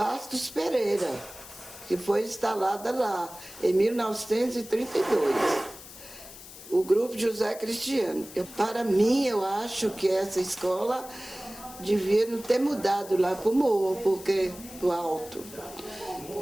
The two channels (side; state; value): left; noise; hiss, 16 dB below the sound